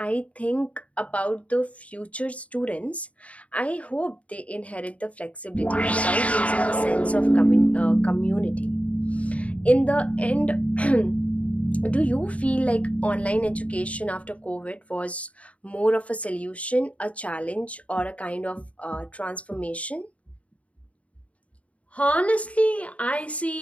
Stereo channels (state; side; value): late; right; 0.066 ms